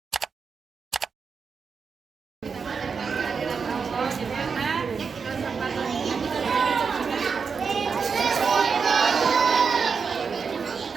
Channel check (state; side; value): quieter; left; 5.6 dB